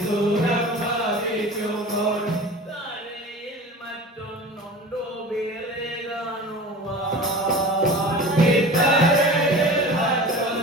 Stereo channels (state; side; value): normal; both; correlation 0.37